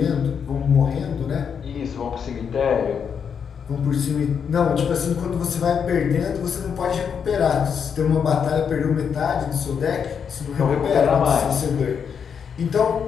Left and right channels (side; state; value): right; quieter; 7.0 dB